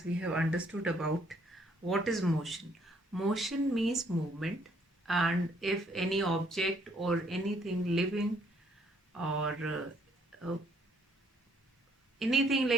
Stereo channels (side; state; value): both; normal; correlation 0.66